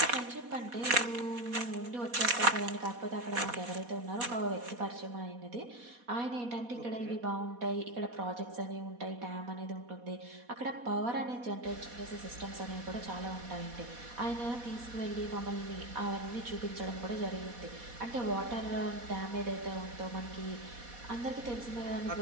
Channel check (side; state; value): left; late; 4.1 ms